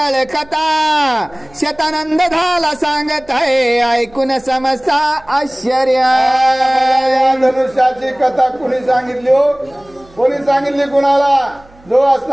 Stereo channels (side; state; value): right; noise; hum, 27 dB below the sound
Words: कथा, शतानंद झाला सांगत आहे ऐकून समजता आश्चर्य. या धनुष्याची कथा कुणी सांगितली हो? कोणी सांगितली कुणाला? जो